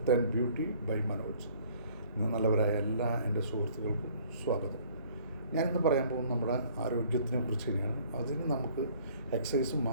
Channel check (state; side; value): inverted; both; correlation -0.57